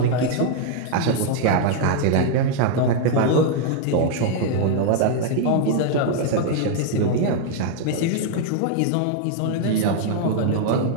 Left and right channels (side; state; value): both; different; correlation 0.00